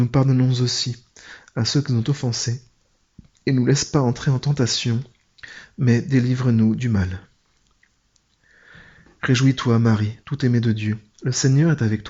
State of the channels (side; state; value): both; identical; correlation 1.00